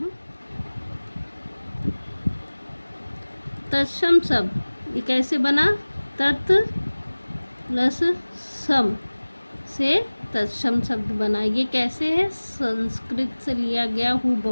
तत्सम शब्द ये कैसे बना? तत् प्लस सम से तत्सम शब्द बना। ये कैसे है? संस्कृत से लिया गया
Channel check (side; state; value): both; inverted; correlation -1.00